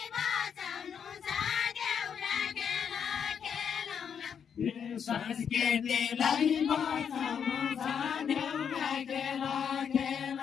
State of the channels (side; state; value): right; quieter; 7.5 dB